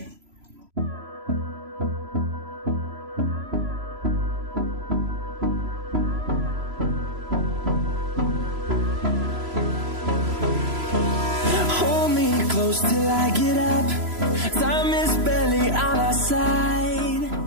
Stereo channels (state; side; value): late; left; 3.0 ms